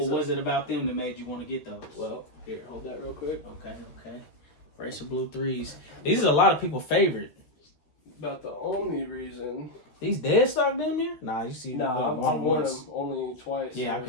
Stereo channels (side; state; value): right; late; 13 ms